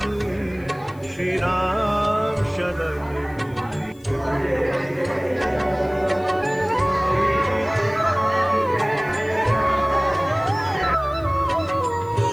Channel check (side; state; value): left; noise; hiss, 29 dB below the sound